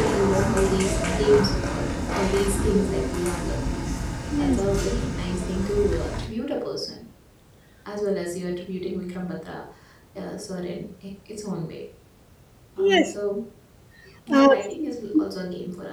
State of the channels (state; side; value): identical; both; correlation 1.00